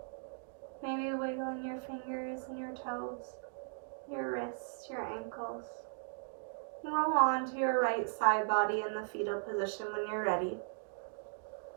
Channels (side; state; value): left; silent; digital silence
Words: Maybe wiggling your fingers and your toes, your wrists, your ankles. And roll on to your right side body in the fetal position when you're ready.